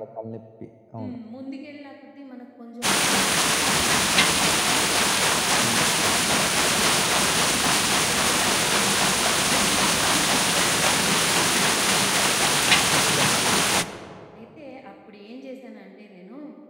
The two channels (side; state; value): both; identical; correlation 1.00